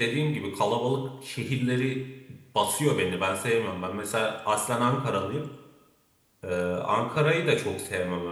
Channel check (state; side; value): identical; both; correlation 1.00